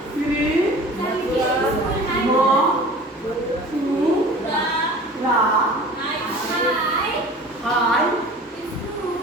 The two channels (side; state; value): both; normal; correlation 0.42